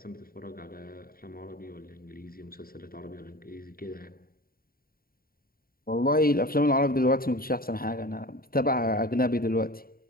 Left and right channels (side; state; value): right; late; 0.43 ms